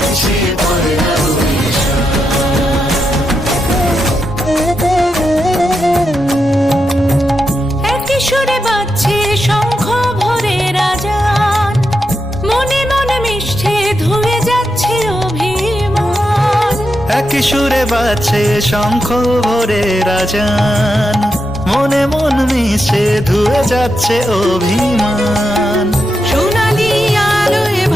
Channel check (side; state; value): both; normal; correlation 0.86